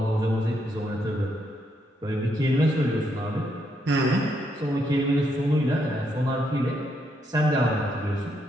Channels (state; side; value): normal; both; correlation 0.77